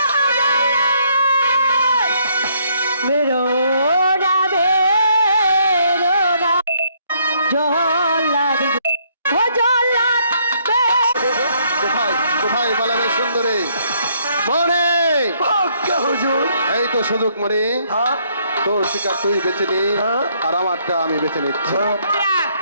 কোথায় পালাবে সুন্দরী মনে? এই তো সুযোগ মনে, তোর শিকার তুই বেছে নি আর আমারটা আমি বেছে নিচ্ছি।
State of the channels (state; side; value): inverted; both; correlation -0.69